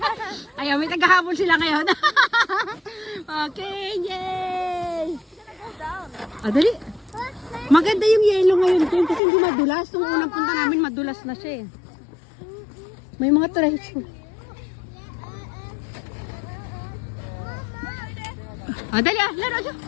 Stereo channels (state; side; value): drops out; right; at 9.2 s